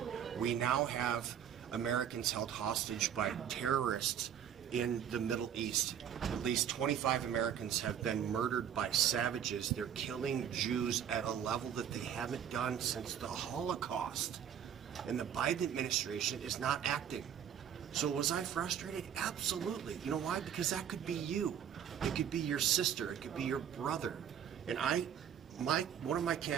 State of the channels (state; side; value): quieter; left; 9.1 dB